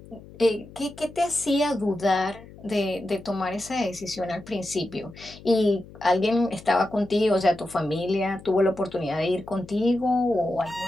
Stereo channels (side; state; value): left; noise; hum, 19 dB below the sound